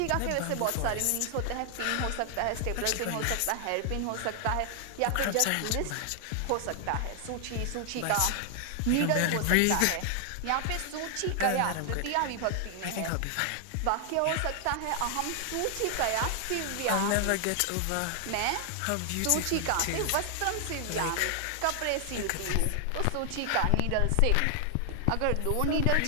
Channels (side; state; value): both; different; correlation 0.00